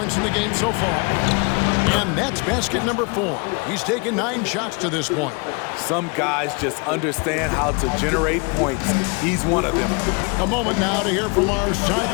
in the game so far. And that's basket number 4. He's taken 9 shots to this point. Some guys just understand how to generate points. He's one of them. A moment now to hear from our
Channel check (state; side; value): quieter; right; 32.0 dB